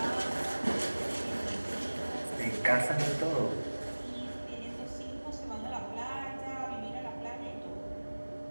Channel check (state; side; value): inverted; both; correlation -1.00